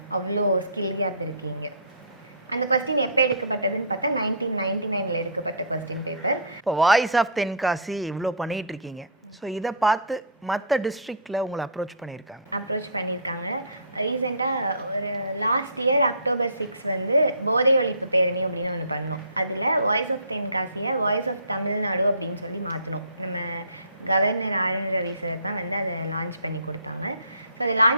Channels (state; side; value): inverted; both; correlation -0.42